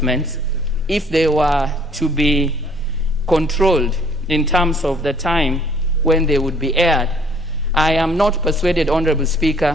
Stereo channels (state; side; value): normal; both; correlation 0.59